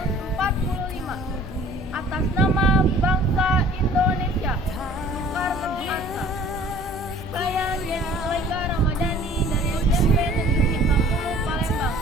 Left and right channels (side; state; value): both; normal; correlation 0.51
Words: Atas nama bangsa Indonesia.